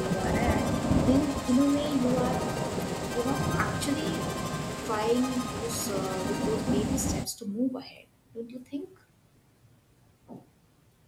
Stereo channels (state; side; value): identical; both; correlation 1.00